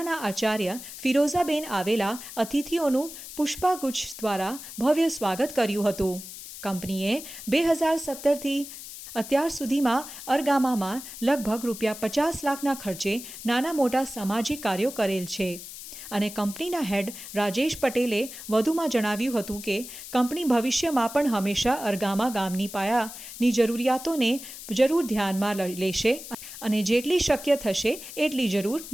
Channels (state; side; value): noise; left; hiss, 12 dB below the sound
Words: આચાર્ય ફિરોઝાબેન આવેલા અતિથિઓનું પુષ્પગુચ્છ દ્વારા ભવ્ય સ્વાગત કર્યું હતું। કંપનીએ 2017થી અત્યાર સુધીમાં અરગામામાં લગભગ ₹50 લાખના ખર્ચે નાના મોટા સામાજિક કાર્યો કરેલ છે। અને કંપનીના હેડ રાજેશ પટેલે વધુમાં જણાવ્યું હતું કે કંપની ભવિષ્યમાં પણ હંમેશા અરગામા ગામની પાયાની જરૂરિયાતોને જરૂર ધ્યાનમાં લેશે અને જેટલી શક્ય થશે એટલી જરૂર